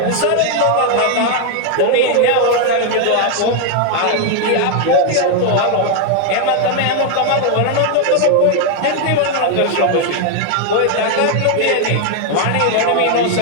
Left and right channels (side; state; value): both; different; correlation 0.01